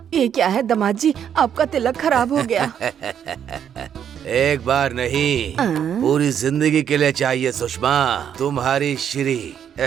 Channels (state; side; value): quieter; left; 8.8 dB